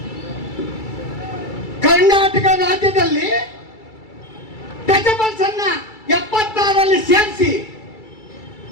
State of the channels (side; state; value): right; late; 2.3 ms